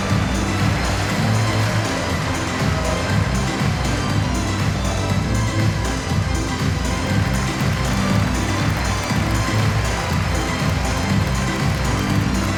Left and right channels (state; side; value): identical; both; correlation 1.00